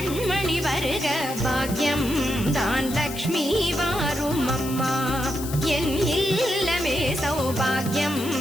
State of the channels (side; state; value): left; noise; hiss, 11 dB below the sound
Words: வருக. பாக்யம் தான் லக்ஷ்மி வாரும் அம்மா. என் இல்லமே சௌபாகியம்